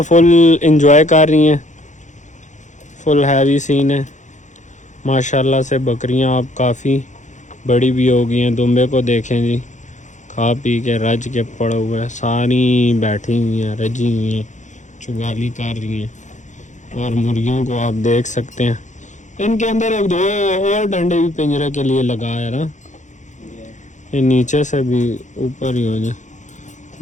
फुल इंजॉय कर रही हैं, फुल हैवी सीन है माशाल्लाह से। बकरियां अब काफ़ी बड़ी भी हो गई हैं। दुम्बे को देखें जी, खा पी के रज के पड़े हुए हैं, सारी बैठी हुई हैं, रजी हुई हैं, चुगाली कर रही हैं। और मुर्गियों को आप देख सकते हैं, इनके अंदर एक दो और डंडे भी पिंजरे के लिए लगा है ना, ये नीचे से भी ऊपर ही हो जाए।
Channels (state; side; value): late; right; 0.35 ms